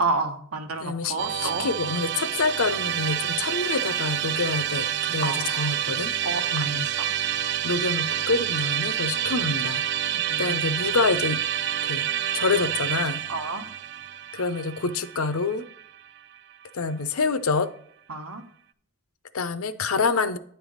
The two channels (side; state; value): both; normal; correlation -0.14